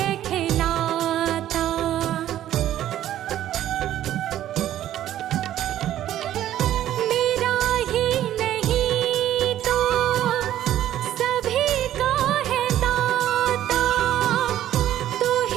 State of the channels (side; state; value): left; quieter; 12.4 dB